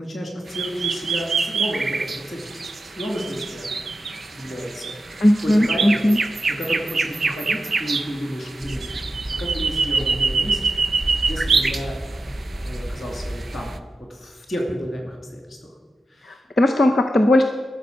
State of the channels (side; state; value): both; normal; correlation 0.90